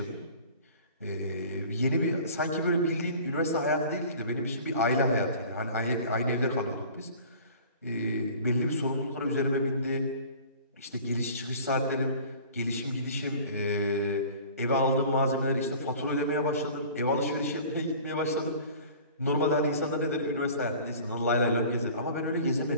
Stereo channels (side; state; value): both; inverted; correlation -0.45